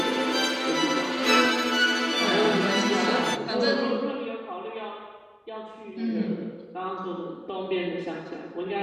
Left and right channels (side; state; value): both; identical; correlation 1.00